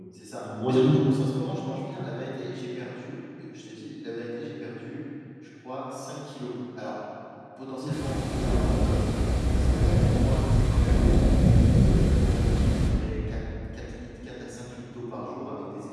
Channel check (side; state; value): both; identical; correlation 1.00